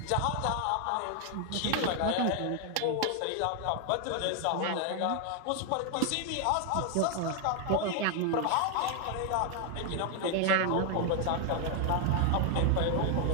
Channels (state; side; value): different; both; correlation 0.00